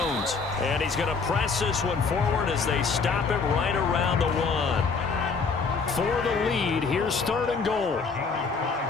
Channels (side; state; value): right; quieter; 4.9 dB